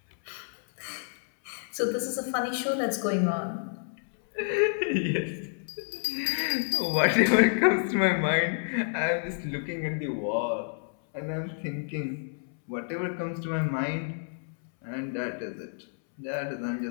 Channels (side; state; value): right; silent; 58 dB below the other